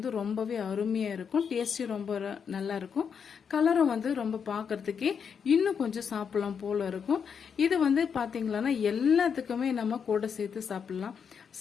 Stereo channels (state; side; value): quieter; right; 6.8 dB